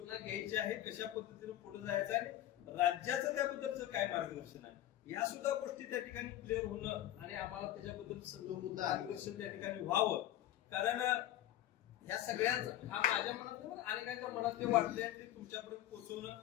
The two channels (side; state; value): right; quieter; 13.2 dB